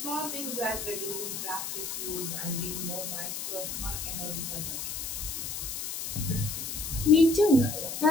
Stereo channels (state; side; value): noise; left; hiss, 5 dB below the sound